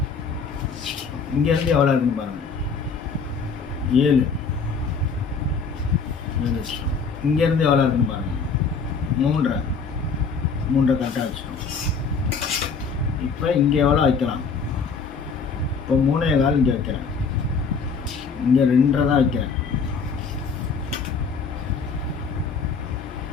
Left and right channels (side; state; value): right; quieter; 5.2 dB